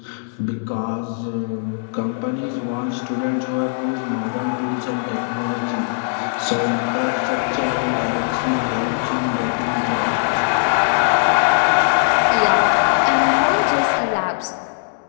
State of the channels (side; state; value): right; silent; digital silence